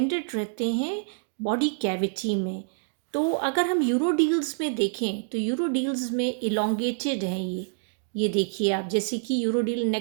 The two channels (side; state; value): left; silent; digital silence